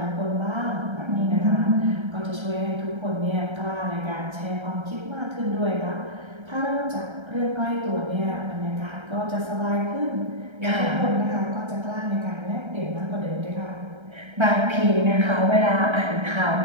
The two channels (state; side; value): late; left; 1.3 ms